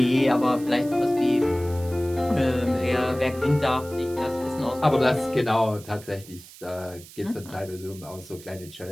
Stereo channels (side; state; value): right; noise; hiss, 19 dB below the sound